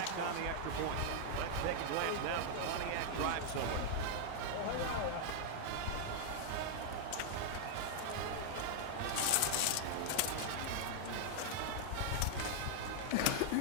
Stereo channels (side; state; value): both; different; correlation -0.01